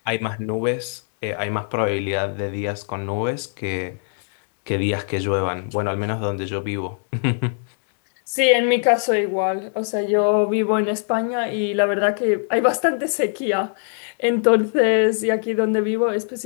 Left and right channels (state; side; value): silent; right; 64 dB below the other